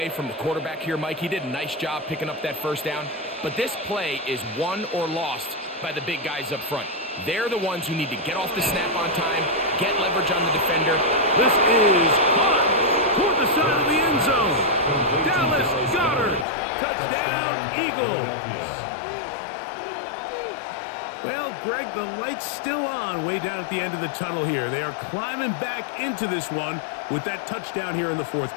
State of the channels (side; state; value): right; drops out; at 16.4 s